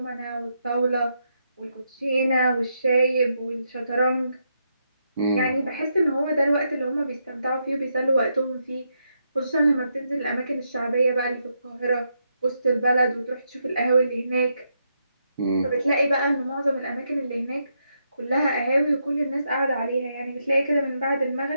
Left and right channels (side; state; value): both; inverted; correlation -0.80